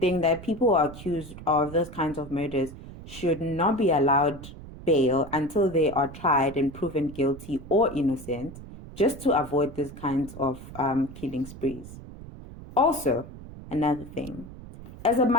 that people who are accused of those kinds of murders should not be allowed bail until they are tried and proven guilty or innocent, just to avoid these kinds of killing sprees. Also, another thing, as a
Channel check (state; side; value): noise; right; rumble, 14 dB below the sound